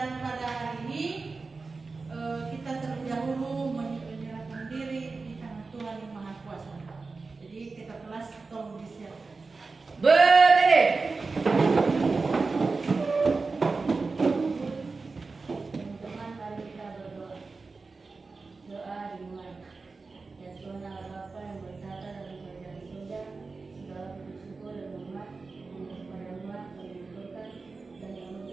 pada hari ini kita terlebih dahulu menyerahkan diri di tangan Tuhan yang Maha Kuasa. Jadi kita kelas tolong disiapkan. Berdiri. Teman-teman, mari kita berdoa. Doa dimulai. Ya Tuhan Allah Bapa yang bertata dalam kerajaan surga, segala puji syukur dan hormat hanya kepada-Mu kami berikan dan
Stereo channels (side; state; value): left; quieter; 4.1 dB